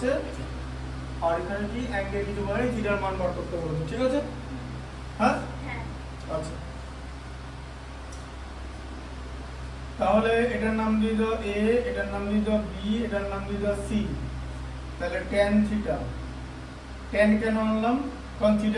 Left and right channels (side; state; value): both; identical; correlation 1.00